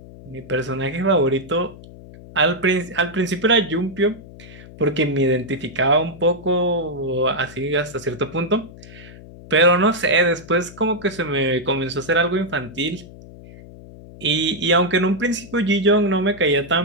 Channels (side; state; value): left; noise; hum, 18 dB below the sound